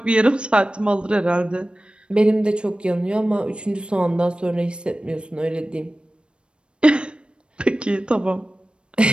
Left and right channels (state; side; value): late; left; 0.056 ms